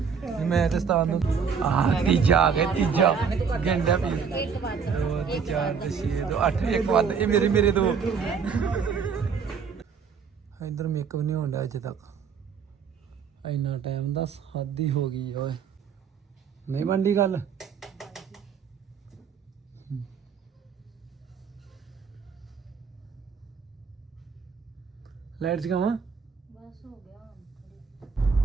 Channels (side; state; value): left; quieter; 6.2 dB